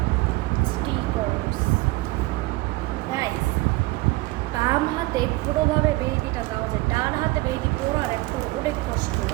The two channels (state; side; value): quieter; left; 21.1 dB